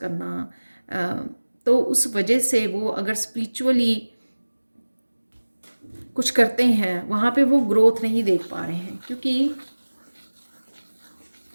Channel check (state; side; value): inverted; both; correlation -1.00